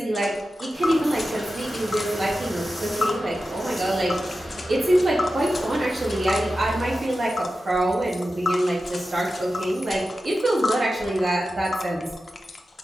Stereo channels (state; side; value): normal; both; correlation 0.92